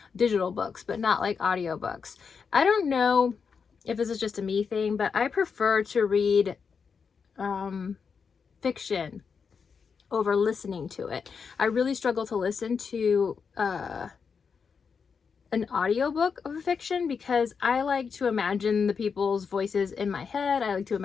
digital books, but not like audiobooks. I don't know if this is just a me thing, but I prefer to read fiction over listening to it. I really struggle to listen to an audiobook of a fiction because I like to imagine the people's voices in my head. I like to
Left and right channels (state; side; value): quieter; right; 5.9 dB